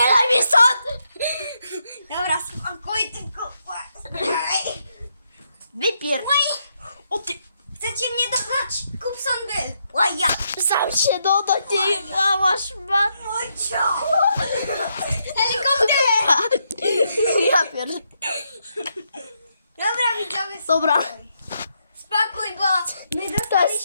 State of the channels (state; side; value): inverted; both; correlation -0.79